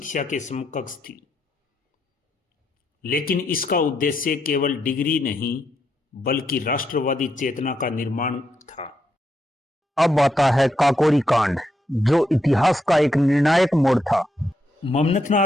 के समकक्ष थी, लेकिन इसका उद्देश्य केवल डिग्री नहीं बल्कि राष्ट्रवादी चेतना का निर्माण था। अब आता है काकोरी कांड, जो इतिहास का एक निर्णायक मोड़ था।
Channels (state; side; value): normal; both; correlation 0.80